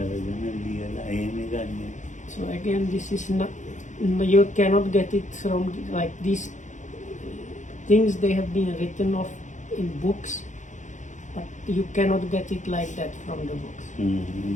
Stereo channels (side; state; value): right; late; 0.35 ms